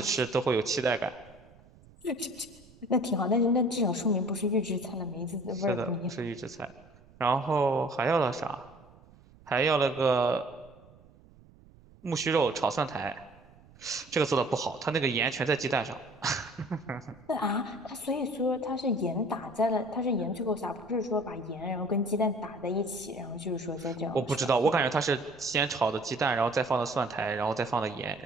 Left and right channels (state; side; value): noise; right; rumble, 25 dB below the sound